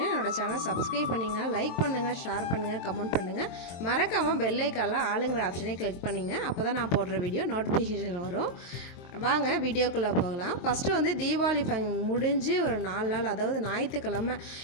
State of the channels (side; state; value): right; late; 23 ms